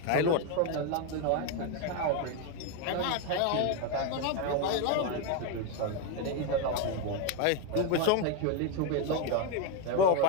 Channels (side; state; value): both; different; correlation 0.02